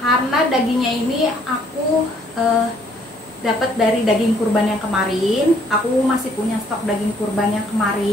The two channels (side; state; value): both; normal; correlation 0.64